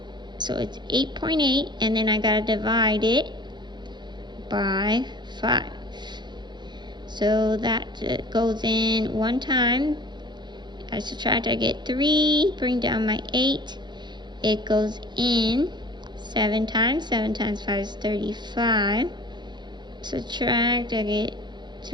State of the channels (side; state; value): left; late; 0.21 ms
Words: So it's 8.8, and then I got to divide it by 5. So that goes in one time. I subtract, I get 3. Bring down my 8. It goes in 7 times. 7 times 5 is 35. Subtract, I get